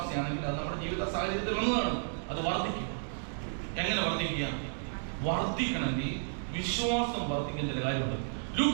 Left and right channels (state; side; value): silent; left; digital silence